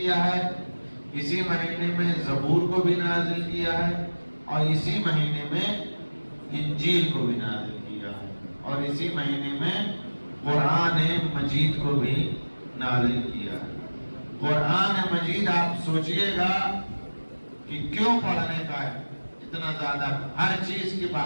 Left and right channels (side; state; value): both; inverted; correlation -1.00